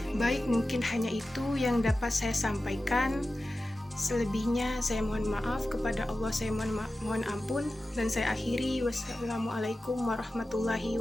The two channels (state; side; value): normal; both; correlation 0.94